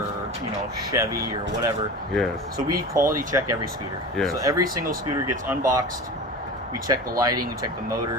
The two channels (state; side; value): normal; both; correlation 0.32